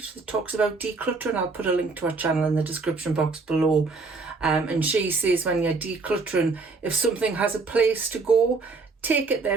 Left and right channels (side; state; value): left; quieter; 4.0 dB